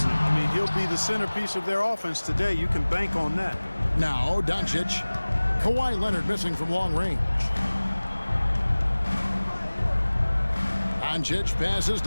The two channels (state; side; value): inverted; both; correlation -1.00